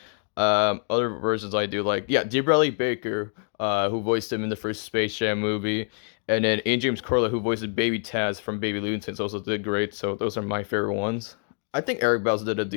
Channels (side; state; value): right; silent; 61 dB below the other